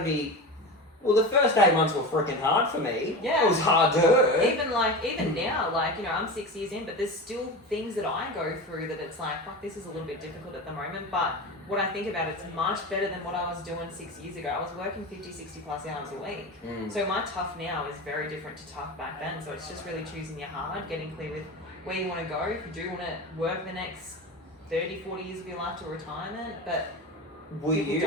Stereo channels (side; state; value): both; normal; correlation 0.26